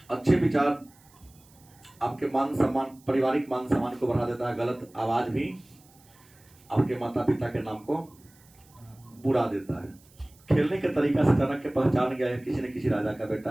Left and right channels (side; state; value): right; noise; hiss, 28 dB below the sound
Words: अच्छे विचार आपके मान सम्मान, पारिवारिक मान सम्मान को बढ़ा देता है, गलत आवाज भी आपके माता पिता के नाम को बुरा देता है। खेलने के तरीका से चाणक्य पहचान गया है किसी न किसी राजा का बेटा